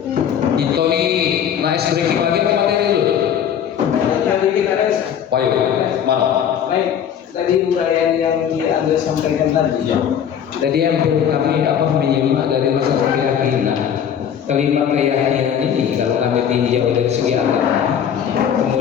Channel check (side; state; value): right; quieter; 8.7 dB